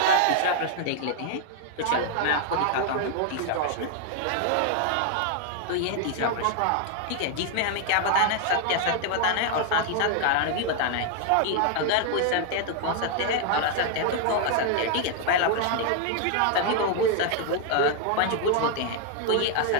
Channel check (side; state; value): both; different; correlation 0.00